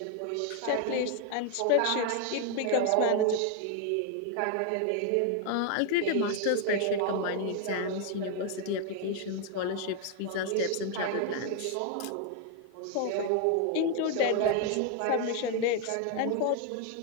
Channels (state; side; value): different; both; correlation 0.01